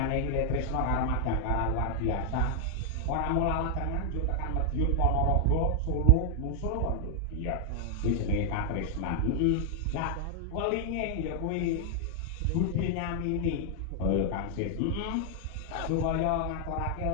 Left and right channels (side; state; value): both; different; correlation 0.00